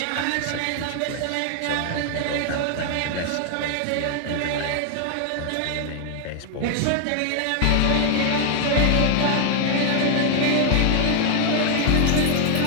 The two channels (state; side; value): different; both; correlation 0.00